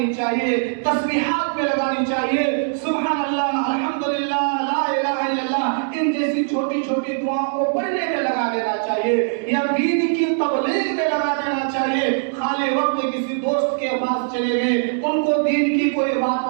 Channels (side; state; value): left; silent; digital silence